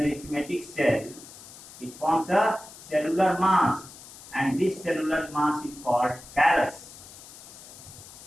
cell, it forms a cellular mass, and this cellular mass is called callus.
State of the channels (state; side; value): noise; left; hiss, 17 dB below the sound